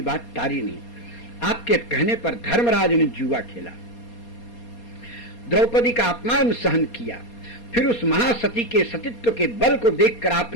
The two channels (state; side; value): late; right; 4.2 ms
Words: बात टारी नहीं। आपके कहने पर धर्मराज ने जुआ खेला, द्रौपदी का अपमान सहन किया, फिर उस महासती के सतीत्व के बल को देखकर